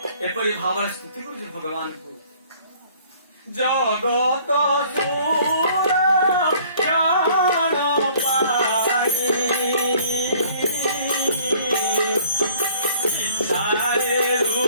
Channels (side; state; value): both; inverted; correlation -0.56